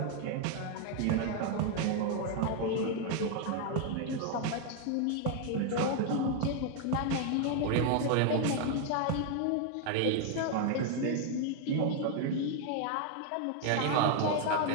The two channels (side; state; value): both; different; correlation 0.00